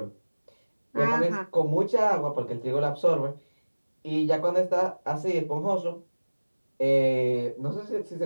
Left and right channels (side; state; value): both; inverted; correlation -1.00